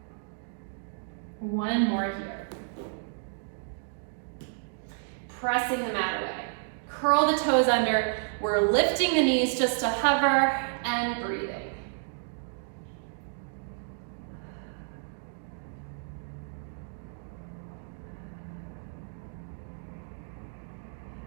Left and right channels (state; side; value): silent; left; digital silence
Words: One more here. Pressing the mat away. Curl the toes under. We're lifting the knees just to hover and breathing.